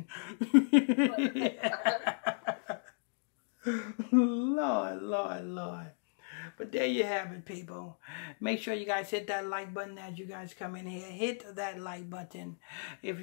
Lord, Lord, Lord. But there you have it, people. Make sure you guys hit that like button as you guys come in here. Hit that like button. If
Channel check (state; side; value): silent; right; digital silence